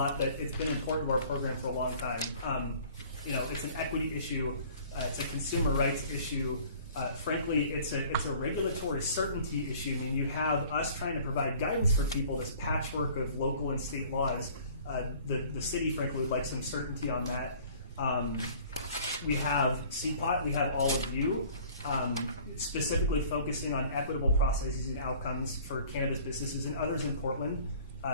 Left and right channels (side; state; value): both; inverted; correlation -0.50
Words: but it's been important to our program for a long time. It's an equity issue. It's a consumer rights issue. Frankly, it's a regulatory certainty issue. I mean, you have us trying to provide guidance for people, this patchwork of local and state laws. The city, frankly, would like some certainty on that. We have CPOT. We have all of you. Specifically focusing on equitable processes and outcomes for cannabis businesses and others in Portland.